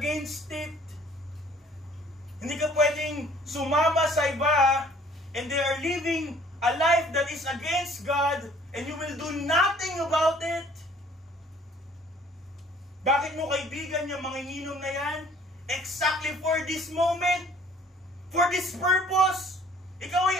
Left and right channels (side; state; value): both; normal; correlation 0.56